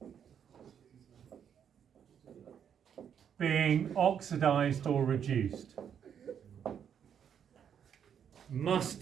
being oxidized or reduced. Must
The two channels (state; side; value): quieter; left; 8.3 dB